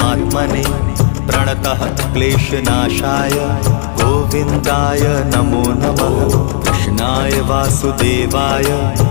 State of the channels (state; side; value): silent; right; digital silence